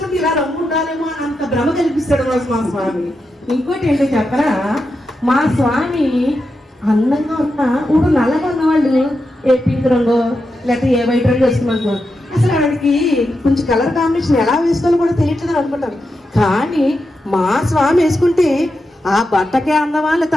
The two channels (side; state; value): both; normal; correlation 0.87